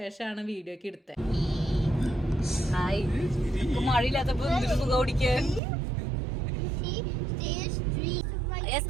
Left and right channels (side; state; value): left; drops out; at 5.6 s